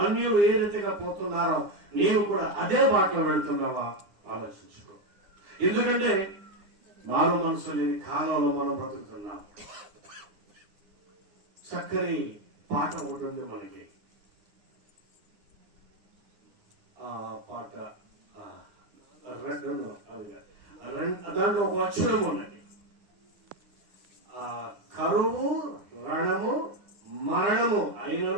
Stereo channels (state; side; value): late; left; 9.5 ms